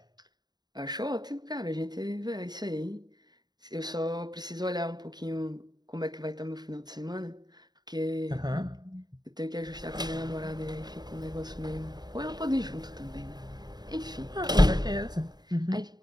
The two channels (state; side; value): late; left; 0.20 ms